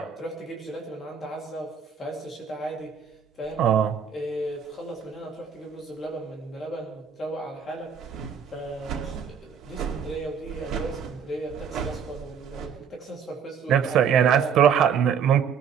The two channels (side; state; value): left; quieter; 7.1 dB